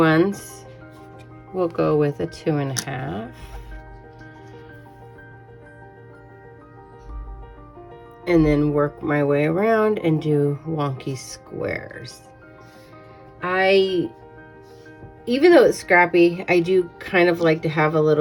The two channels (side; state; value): both; identical; correlation 1.00